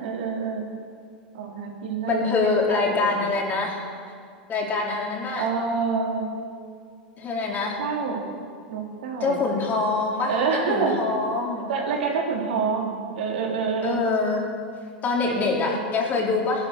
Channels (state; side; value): normal; both; correlation 0.14